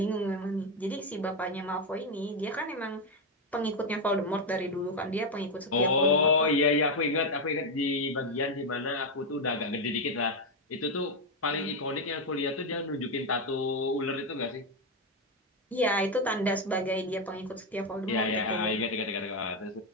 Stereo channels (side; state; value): both; normal; correlation 0.06